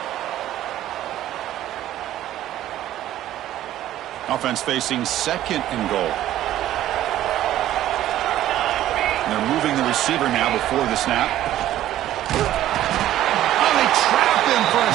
Offense facing 2nd and goal. And they're moving the receiver now before the snap. Oh, they trap him for a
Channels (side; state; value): left; quieter; 13.1 dB